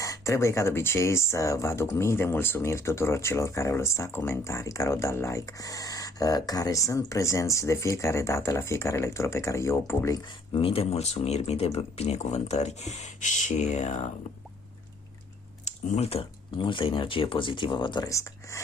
Trebuie ca de obicei să vă aduc mii de mulțumiri tuturor celor care au lăsat comentarii, care au dat like, care sunt prezenți de fiecare dată la fiecare lectură pe care eu o public. Mii de mulțumiri, mii de binecuvântări și multă energie pozitivă vă doresc.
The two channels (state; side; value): normal; both; correlation 0.61